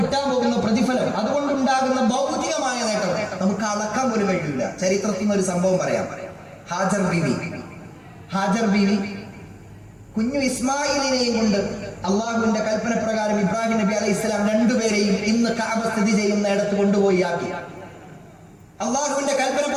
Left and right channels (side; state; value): both; identical; correlation 1.00